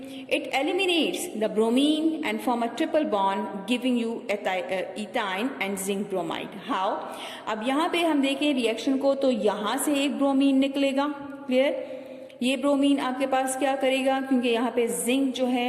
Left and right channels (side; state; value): both; identical; correlation 1.00